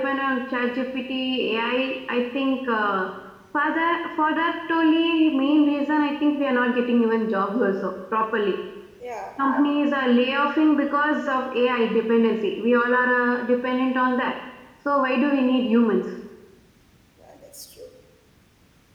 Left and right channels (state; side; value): identical; both; correlation 1.00